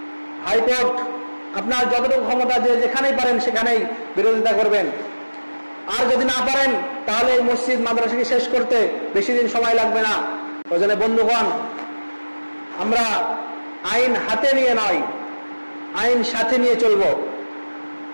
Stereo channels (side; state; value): both; inverted; correlation -1.00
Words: হাইকোর্ট, আপনার যতটুকু ক্ষমতা যে যেখানেই পারেন সেখানেই বিরোধিতা করবেন। আর যদি না পারেন তাহলে এই মসজিদ মাদ্রাসাকে শেষ করতে বেশি দিন সময় লাগবে না। ওই জন্য বন্ধুগণ, আমরা আইন হাতে নিয়ে নয়, আইন সাথে নিয়ে চলব।